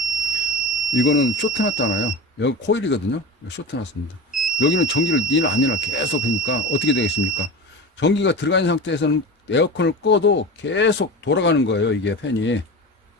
이거는 쇼트 났잖아요. 여기 코일이거든요. 쇼트 났습니다. 여기는 전기를 니나 아니나 계속 하니까 어떻게 되겠습니까? 전기가 들어가 있는 상태에서는 에어컨을 꺼도 계속 돌아가는 거예요. 이게 팬이.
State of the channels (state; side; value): normal; both; correlation 0.28